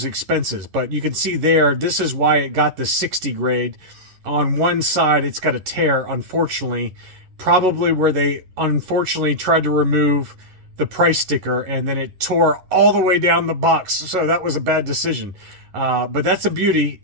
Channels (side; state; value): left; late; 11 ms